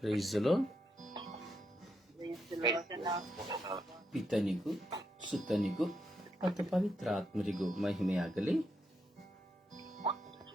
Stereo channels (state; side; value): normal; both; correlation 0.81